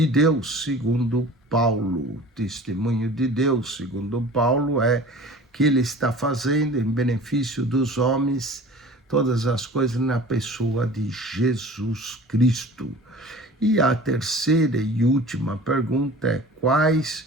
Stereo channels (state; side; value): normal; both; correlation 0.42